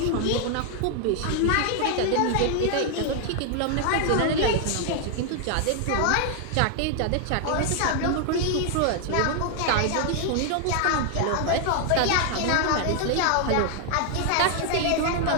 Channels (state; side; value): different; both; correlation 0.00